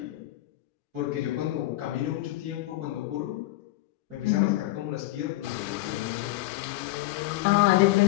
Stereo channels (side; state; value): right; quieter; 17.6 dB